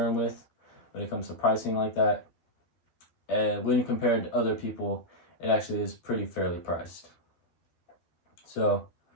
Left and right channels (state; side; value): late; right; 12 ms